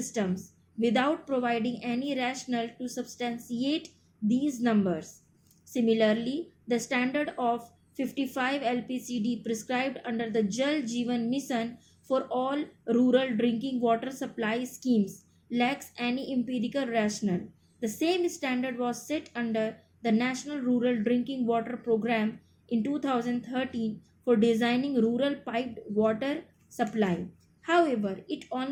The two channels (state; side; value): identical; both; correlation 1.00